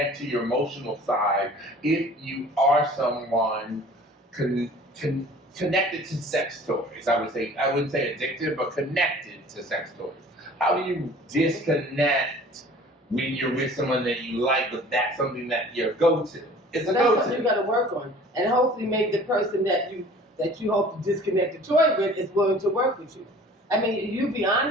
to your emotional side if you are someone connected to sex toys? I wouldn't say addicted, but connected to sex toys. How do you disconnect when you're with someone that you like, but that's something that you're go-to? It's a That's go-to. something you got to work on, and hopefully, maybe the person that you hope to disconnect the toy with is willing to work with you. I mean, you be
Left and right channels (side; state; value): both; normal; correlation 0.47